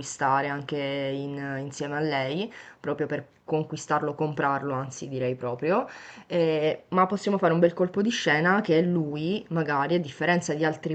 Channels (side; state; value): both; identical; correlation 1.00